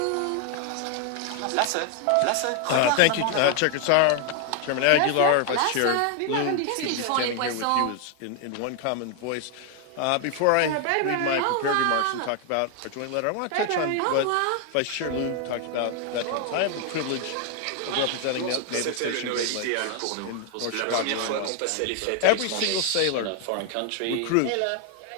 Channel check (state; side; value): different; both; correlation 0.00